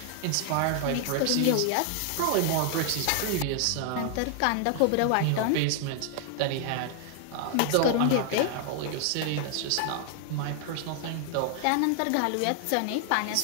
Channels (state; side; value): different; both; correlation 0.00